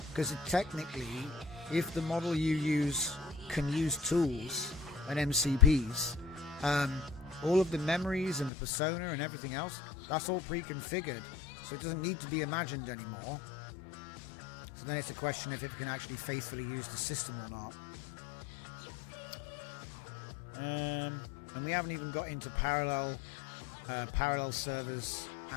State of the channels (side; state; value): right; drops out; at 8.5 s